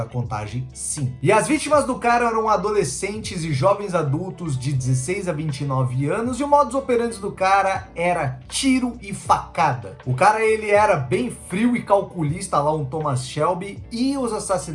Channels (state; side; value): identical; both; correlation 1.00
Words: contagem, sim. E as vítimas do cara eram adolescentes e jovens adultos de 16 a 29 anos, e o modus operandi do cara era tiro e facada. O cara, ele era bem frio e calculista, lá um Thomas Shelby, e os